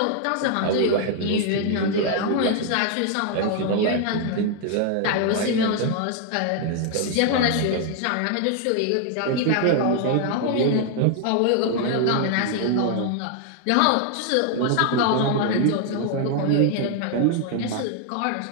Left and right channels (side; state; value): both; different; correlation 0.00